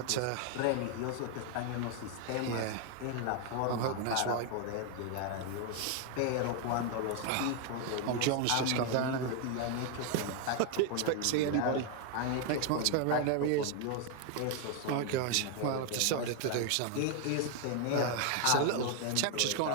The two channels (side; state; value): both; different; correlation 0.01